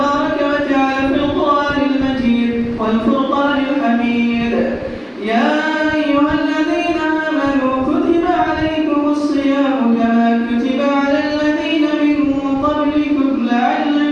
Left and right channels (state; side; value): identical; both; correlation 1.00